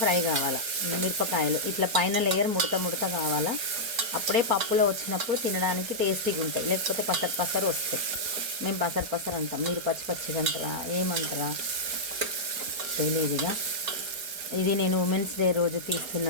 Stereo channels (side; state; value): left; late; 4.3 ms